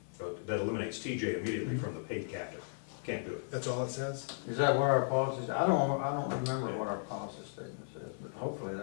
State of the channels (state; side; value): silent; right; 54 dB below the other